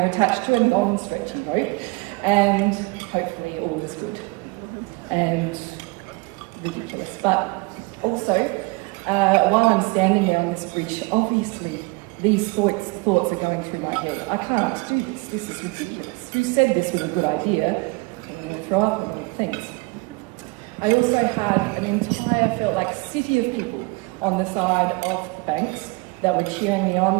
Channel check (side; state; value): left; quieter; 27.0 dB